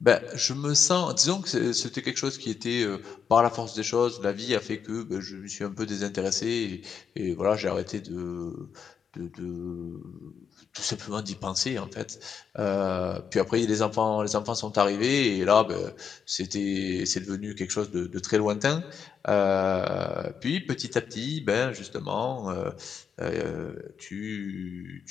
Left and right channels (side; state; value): right; quieter; 6.9 dB